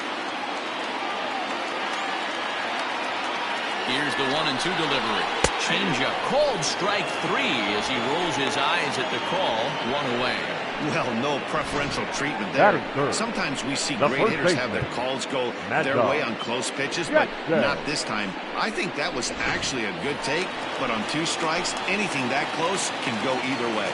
Here's the 1-2 delivery. Changeup, called strike 3 as he rolls his eyes at the call. 1 away. Well, no preferential treatment there. Sometimes we see great hitters have their calls go their way on close pitches, but not this time. I think that was actually a good take, but on 2 strikes, anything that close can go either way.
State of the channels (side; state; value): both; identical; correlation 1.00